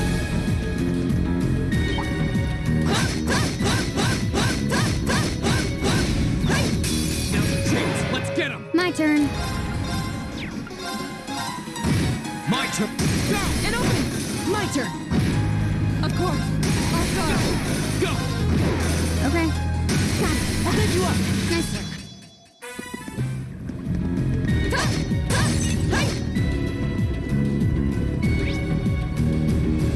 Now's the chance. Let's get him. My turn. My turn. Go. An opening. My turn. Of course. I'll go. Go. Okay. Got it! I'll bend you up! Nice work.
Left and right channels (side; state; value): both; identical; correlation 1.00